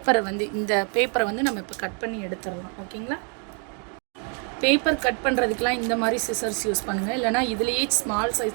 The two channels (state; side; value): quieter; left; 39.3 dB